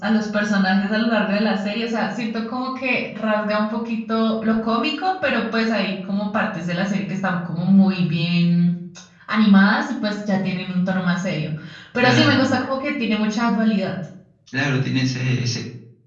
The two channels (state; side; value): identical; both; correlation 1.00